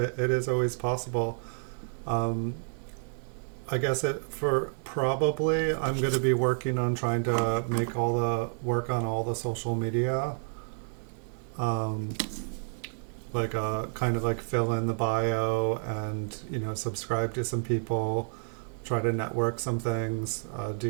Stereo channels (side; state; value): left; silent; 58 dB below the other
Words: is always possible. Um, I guess for probably I'm going to be working on trying to make all the work on all the social media. Um, like kind of like fill in the bio and subscribe to some people, try to network some things,